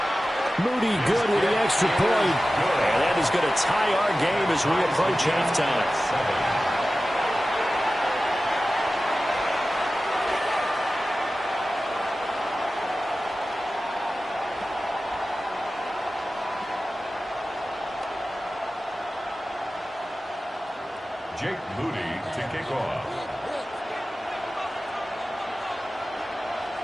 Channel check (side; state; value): both; normal; correlation 0.95